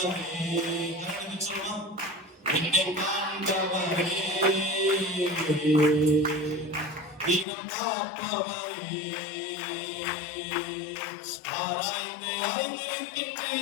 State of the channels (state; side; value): drops out; right; at 7.5 s